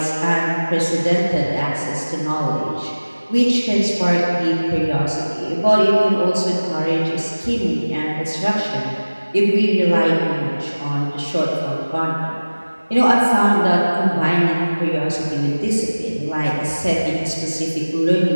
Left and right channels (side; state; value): both; inverted; correlation -1.00